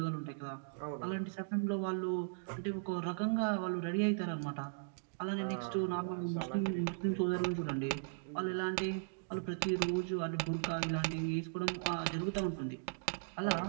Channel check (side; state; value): left; silent; digital silence